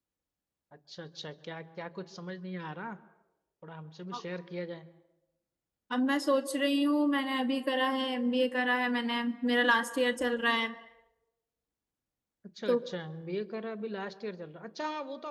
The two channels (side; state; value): both; identical; correlation 1.00